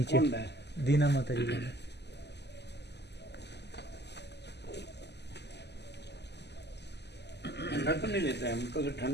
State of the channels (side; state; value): right; late; 0.50 ms